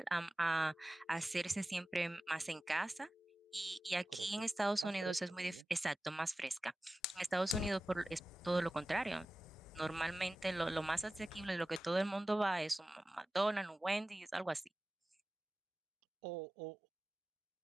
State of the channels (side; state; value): both; normal; correlation 0.96